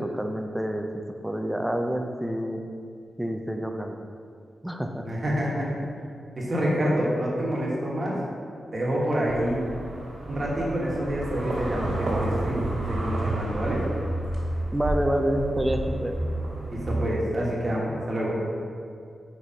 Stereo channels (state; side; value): normal; both; correlation 0.91